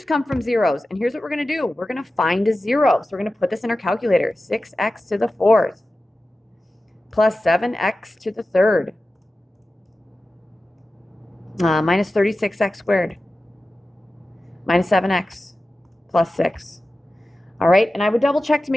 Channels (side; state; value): both; normal; correlation 0.94